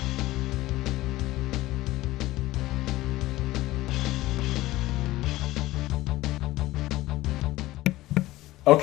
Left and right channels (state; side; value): quieter; right; 17.2 dB